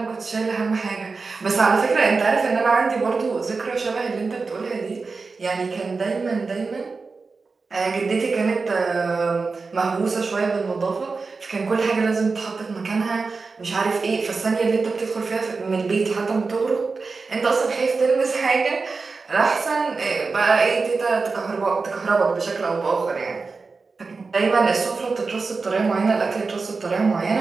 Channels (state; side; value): quieter; left; 4.3 dB